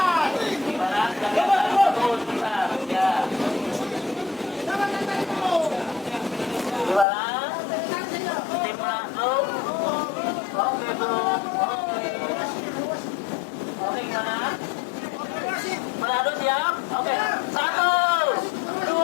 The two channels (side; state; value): right; drops out; at 7.1 s